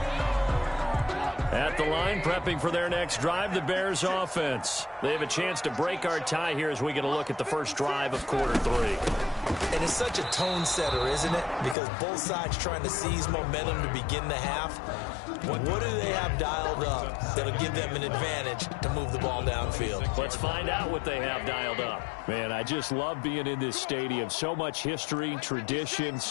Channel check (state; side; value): drops out; right; at 11.8 s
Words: At the line, prepping for their next drive, the Bears offense. They have a chance to break our tie here as we get a look at the first drive of quarter 3. And it's such a tone setter, isn't it? Because both sides trying to seize momentum to begin the half. What do they have dialed up that'll give them an advantage to move the ball downfield? Let's find out what they have dialed up. Man, I just love being in this stadium. So much history, tradition,